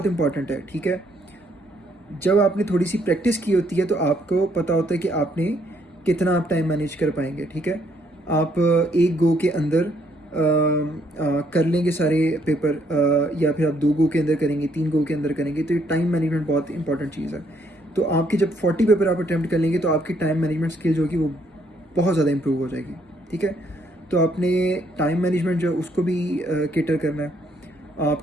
इंपॉर्टेंट है, ठीक है। जब आपने थोड़ी सी प्रैक्टिस की होती है तो आपको पता होता है कि आपने कितना आप टाइम मैनेज कर पाएंगे, ठीक है। आप एक गो के अंदर कर लेंगे सारे पेपर, या फिर आप 2 गो के अंदर करेंगे, 3 गो के अंदर करेंगे, तो ये टाइम मैनेजमेंट बहुत इंपॉर्टेंट चीज़ है। तो आपके जब 40 पेपर आप अटैम्प्ट कर लेंगे तो आपकी टाइम मैनेजमेंट स्किल जो होगी वो बहुत ज़्यादा इंप्रूव हो जाएगी, ठीक है। तो आपने टाइम मैनेजमेंट जो उसको भी केटर करना है।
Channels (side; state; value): both; normal; correlation 0.70